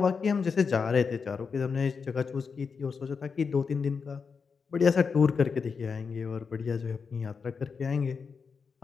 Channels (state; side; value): quieter; right; 5.5 dB